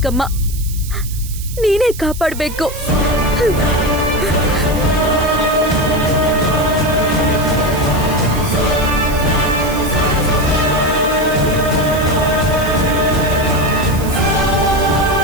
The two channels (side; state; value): right; noise; hiss, 14 dB below the sound